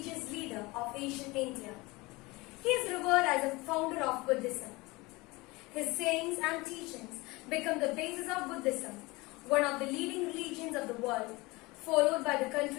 leader of ancient India. He is revered as a founder of Buddhism. His sayings and teachings become the basis of Buddhism, one of the leading religions of the world, followed by the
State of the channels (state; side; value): quieter; right; 23.0 dB